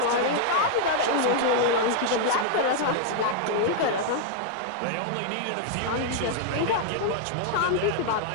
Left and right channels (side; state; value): both; different; correlation 0.00